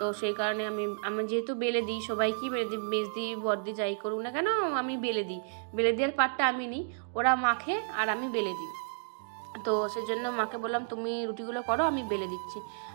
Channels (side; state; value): left; silent; digital silence